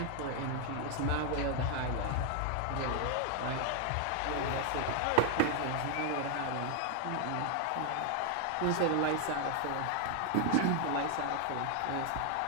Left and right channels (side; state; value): both; different; correlation 0.00